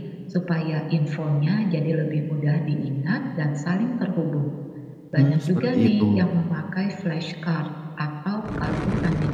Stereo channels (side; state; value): both; identical; correlation 1.00